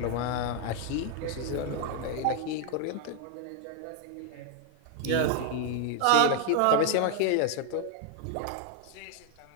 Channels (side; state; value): both; different; correlation 0.00